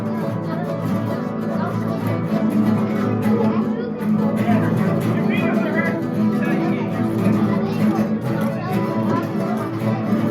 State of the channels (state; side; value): identical; both; correlation 1.00